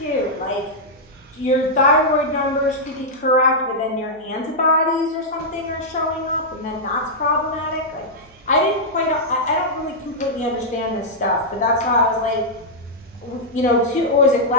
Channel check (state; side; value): noise; right; hum, 29 dB below the sound